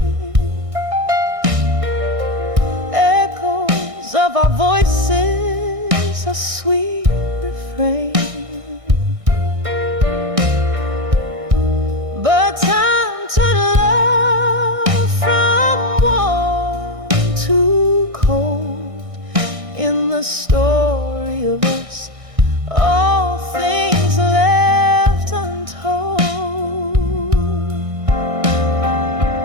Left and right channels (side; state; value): left; late; 1.6 ms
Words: echoes of our voices, a sweet refrain. But time turned love from warm to cold. In the story of us, all things left untold.